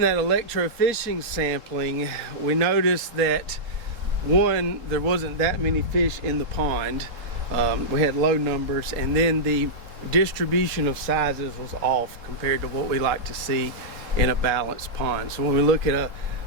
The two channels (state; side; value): late; left; 3.9 ms